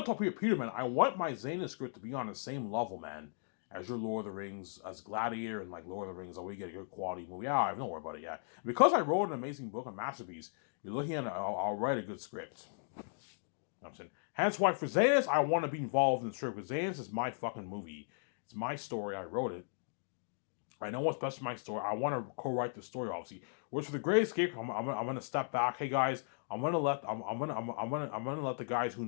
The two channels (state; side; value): silent; right; digital silence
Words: talk to Peter, man. I want my Xena script to be on the same level, man, as your Lord of the Rings, as Gladiator and like Lord of the Rings. Oh, we get a good quality movie. Yeah, don't worry about it. Yeah, because I wrote an amazing book, a masterpiece. You're looking at, I'll write a good script. You know what I'm saying. Hence why for Xenos, I want to be involved in the script because Xenos is my fucking movie. It's my story. I wrote it. I know what's best for my story. I want to co-write the story, obviously. Which for the Great Escape, I'm gonna step back. Hey guys, I'm gonna let the guys who